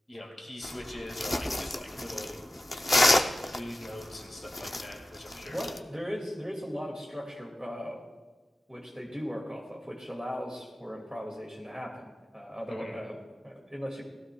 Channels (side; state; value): both; normal; correlation 0.95